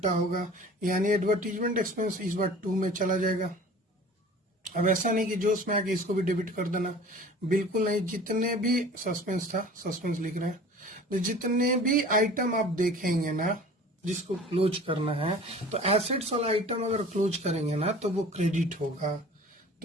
होगा, यानी एडवर्टीजमेंट एक्सपेंस इस बार 2 में चला जाएगा। अब ऐसा नहीं कि जोश में आके इसको भी डेबिट कर देना, बिल्कुल नहीं। जितने भी सस्पेंस था, सस्पेंस लिख रहे हैं, तो जितने भी आइटम आप देखेंगे ना जिसको क्लोज करना है, तो एसेट्स वाला आइटम अगर क्लोज करेंगे ना तो वो क्रेडिट होगा।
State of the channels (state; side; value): normal; both; correlation 0.44